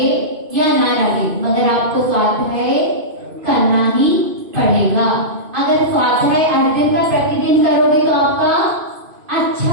या ना लगे मगर आपको स्वाध्याय करना ही पड़ेगा। अगर स्वाध्याय हर दिन का प्रतिदिन करोगे तो आपका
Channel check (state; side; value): late; left; 2.5 ms